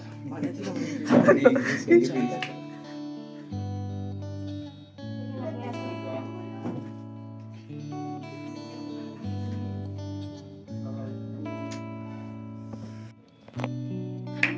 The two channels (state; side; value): identical; both; correlation 1.00